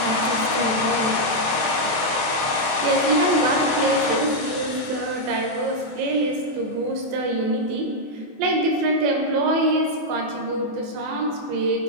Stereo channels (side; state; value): left; late; 27 ms